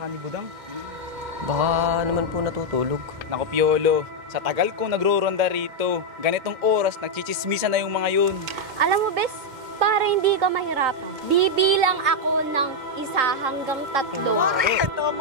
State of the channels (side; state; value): left; late; 2.1 ms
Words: ni Budang. Baka naman po natutulog. Naku, Piolo, sa tagal kong nagro-ronda rito, ganitong oras, nagchichismisan na yung mga yun. Alam mo, Bes, para hindi ka mahirapan, bibilang ako ng 1 hanggang 3. Pare,